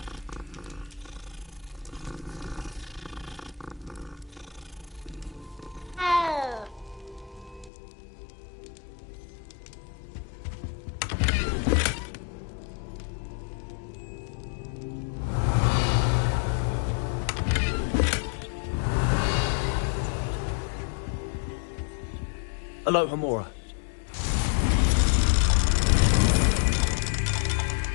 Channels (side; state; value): right; drops out; at 7.7 s